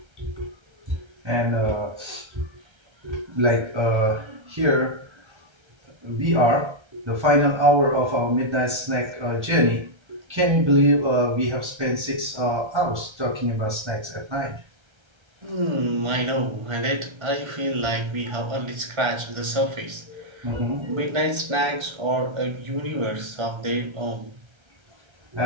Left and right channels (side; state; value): left; late; 1.3 ms